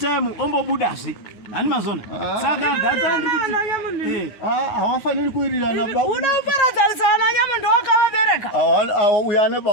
ombobudazve hani mazona saka data ndikuti hawafaniri kuwirirana baba una uparadzanisa nyamundo wakavabereka uya ane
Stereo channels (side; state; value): right; late; 9.5 ms